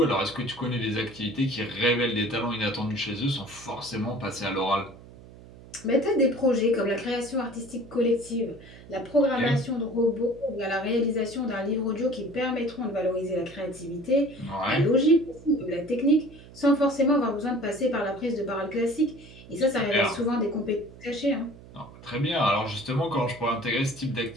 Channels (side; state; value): right; noise; hum, 19 dB below the sound